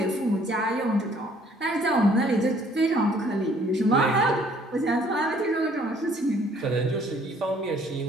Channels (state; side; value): normal; both; correlation 0.60